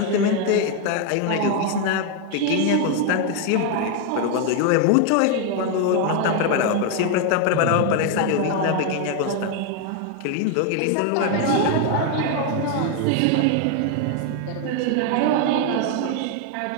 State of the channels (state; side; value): different; both; correlation 0.01